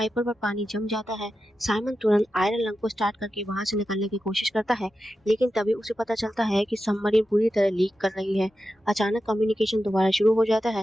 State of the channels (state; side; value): normal; both; correlation 0.91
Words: पर पानी जम जाता है। साइमन तुरंत आयरन लंग को स्टार्ट करके वहां से निकलने की कोशिश करता है, लेकिन तभी उसे पता चलता है कि सबमरीन पूरी तरह लीक कर रही है। अचानक कम्युनिकेशन दोबारा शुरू हो जाता